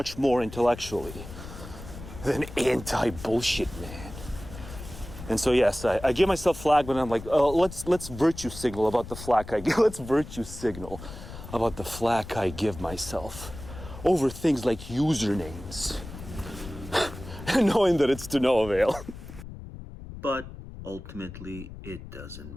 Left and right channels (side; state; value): left; noise; rumble, 13 dB below the sound